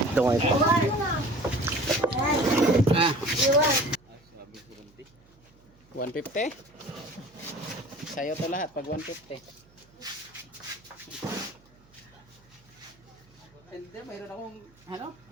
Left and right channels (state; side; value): noise; right; hum, 29 dB below the sound